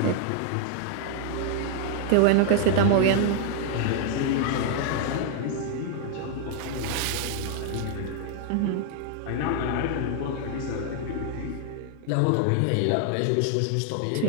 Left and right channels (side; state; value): both; different; correlation 0.00